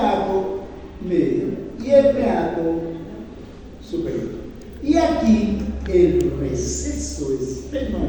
medio y el meato superior. Y aquí el receso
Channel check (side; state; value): both; identical; correlation 1.00